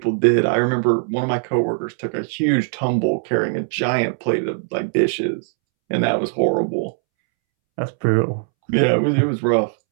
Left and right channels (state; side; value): silent; left; 66 dB below the other